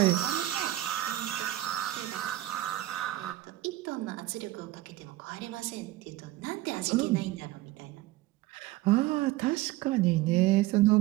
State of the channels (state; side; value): quieter; left; 16.4 dB